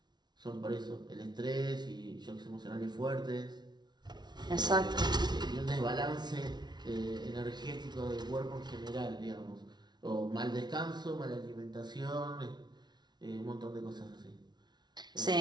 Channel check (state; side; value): late; left; 0.20 ms